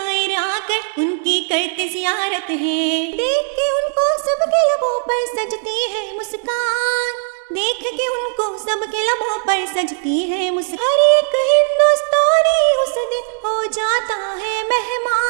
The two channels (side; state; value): left; silent; 59 dB below the other